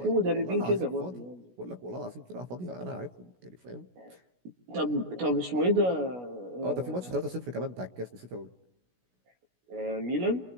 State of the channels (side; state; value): left; late; 16 ms